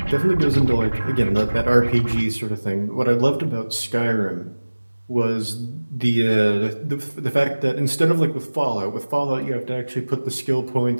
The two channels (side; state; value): both; inverted; correlation -1.00